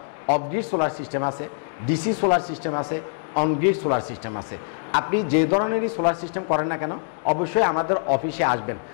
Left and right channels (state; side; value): silent; right; digital silence